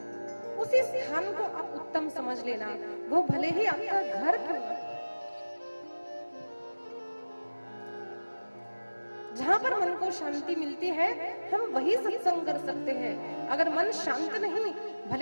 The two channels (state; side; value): inverted; both; correlation -1.00